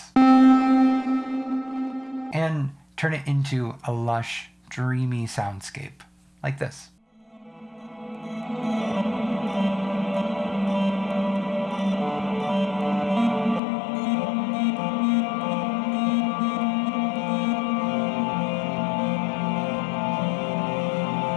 and turn it into a lush, dreamy soundscape like this.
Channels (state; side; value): drops out; right; at 13.6 s